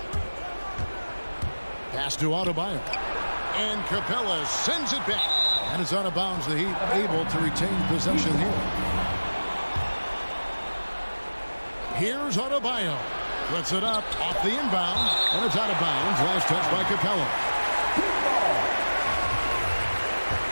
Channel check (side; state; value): both; inverted; correlation -1.00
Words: Pass to Adebayo. And Capella sends it back. And it's out of bounds. The Heat able to retain possession here. Here's Adebayo. Puts it up off the inbound. And it's out of bounds. Last touch by Capella.